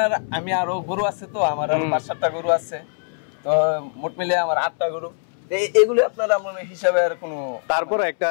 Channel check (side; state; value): right; silent; 64 dB below the other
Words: আমি আরো গরু আছে, তো আমার আরো 5-7টা গরু আছে, তো মোট মিলে আমার 8টা গরু। এগুলো আপনার আমার হিসাবে আর কোনো, তারপরে একটা